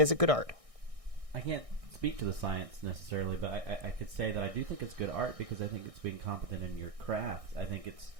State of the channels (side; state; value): left; late; 1.6 ms